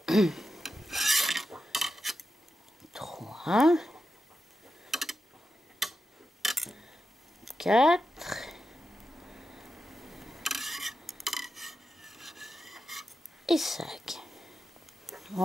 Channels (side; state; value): both; normal; correlation 0.89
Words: trois, quatre, et 5.